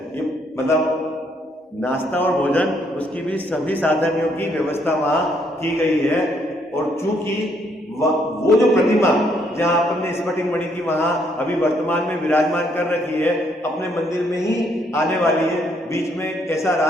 ये मतलब नाश्ता और भोजन, उसकी भी सभी साधनों की व्यवस्था वहां की गई है। और चूंकि वो जो प्रतिमा जहां अपन ने स्फटिक मणि की वहां अभी वर्तमान में विराजमान कर रखी है, अपने मंदिर में ही आने वाली है। बीच में ऐसा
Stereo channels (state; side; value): normal; both; correlation 0.71